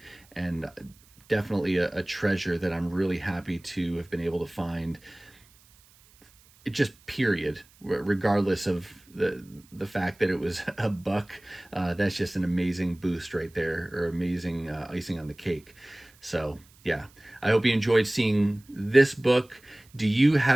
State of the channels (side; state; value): right; noise; hiss, 28 dB below the sound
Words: and definitely a treasure that I'm really happy to have been able to find just period, regardless of the fact that it was a buck. That's just an amazing boost right there, or amazing icing on the cake. So yeah, I hope you enjoyed seeing this book. Do you